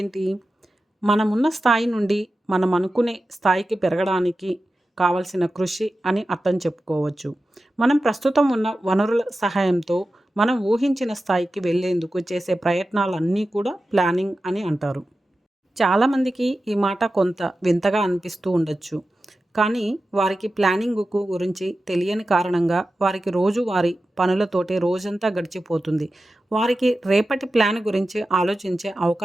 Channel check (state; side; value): normal; both; correlation 0.93